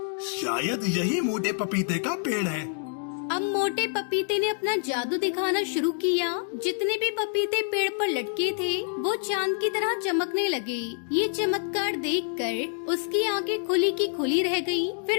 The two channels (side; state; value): right; silent; 60 dB below the other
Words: शायद यही मोटे पपीते का पेड़ है। अब मोटे पपीते ने अपना जादू दिखाना शुरू किया। जितने भी पपीते पेड़ पर लटके थे वो चांद की तरह चमकने लगे। ये चमत्कार देखकर उसकी आंखें खुली की खुली रह गईं।